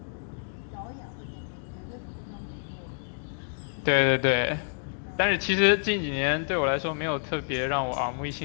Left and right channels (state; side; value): silent; right; digital silence